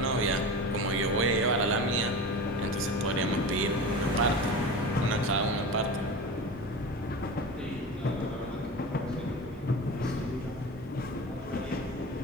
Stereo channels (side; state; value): both; normal; correlation 0.30